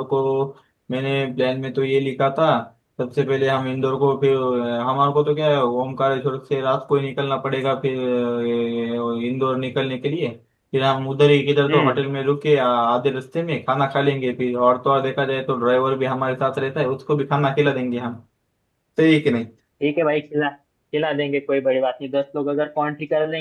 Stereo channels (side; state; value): both; identical; correlation 1.00